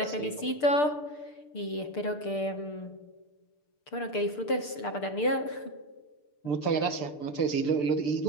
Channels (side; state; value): right; late; 6.8 ms